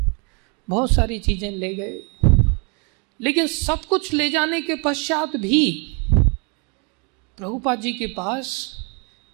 बहुत सारी चीजें ले गए, लेकिन सब कुछ ले जाने के पश्चात भी प्रभुपाद जी के पास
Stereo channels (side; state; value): left; quieter; 33.8 dB